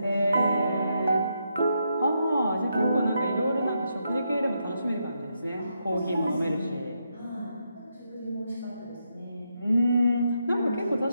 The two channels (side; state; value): both; inverted; correlation -0.81